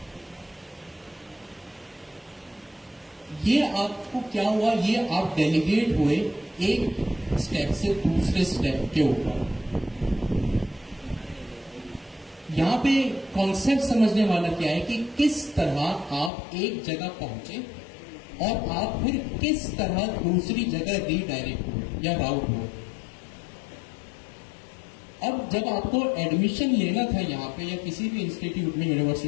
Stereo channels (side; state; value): right; drops out; at 16.3 s